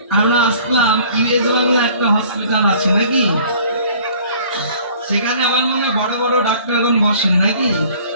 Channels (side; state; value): both; inverted; correlation -0.52